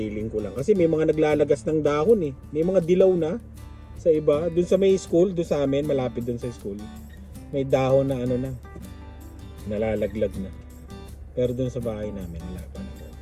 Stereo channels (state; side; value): identical; both; correlation 1.00